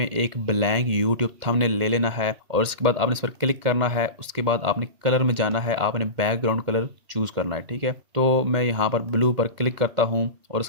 एक ब्लैंक यूट्यूब थंबनेल ले लेना है और उसके बाद आपने इस पर क्लिक करना है। उसके बाद आपने कलर में जाना है, आपने बैकग्राउंड कलर चूज़ करना है, ठीक है। तो मैं यहाँ पर ब्लू पर क्लिक करता हूँ और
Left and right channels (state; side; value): late; left; 2.1 ms